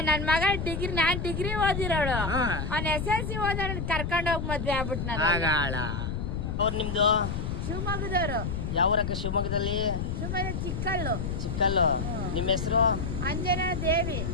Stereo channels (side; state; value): left; noise; rumble, 3 dB below the sound